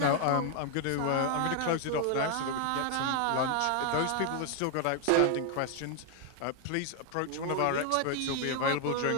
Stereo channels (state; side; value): different; both; correlation 0.00